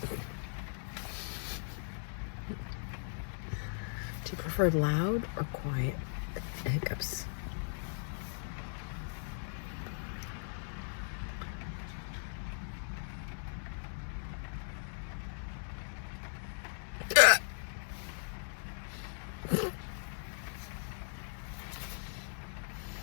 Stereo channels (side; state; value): right; silent; digital silence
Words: you prefer loud or quiet hiccups?